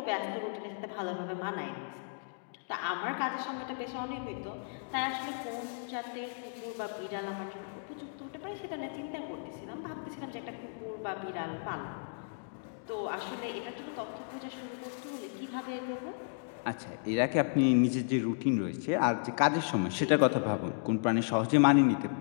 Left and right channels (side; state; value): right; silent; digital silence